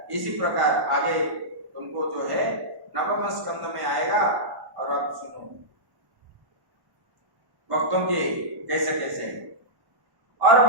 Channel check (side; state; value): left; late; 1.1 ms